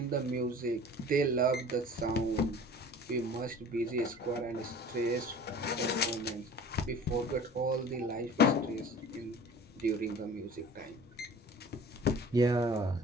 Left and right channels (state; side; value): normal; both; correlation 0.43